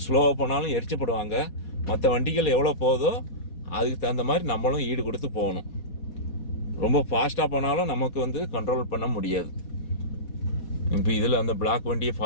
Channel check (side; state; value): right; late; 4.2 ms